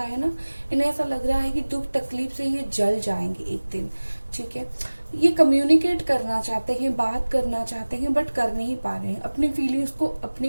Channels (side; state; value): both; inverted; correlation -1.00